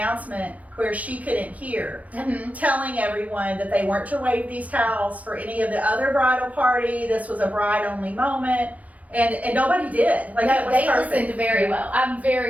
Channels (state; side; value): late; left; 0.069 ms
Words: where she couldn't hear, Mhm. telling everyone that they weren't to wave these towels for any of the other bridal party. This was a bride-only moment. And nobody did. Like, it No, was they perfect. listened very well. I'm